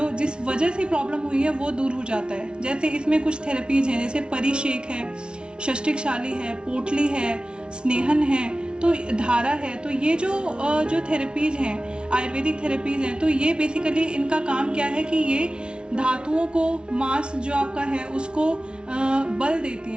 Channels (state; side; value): late; left; 0.056 ms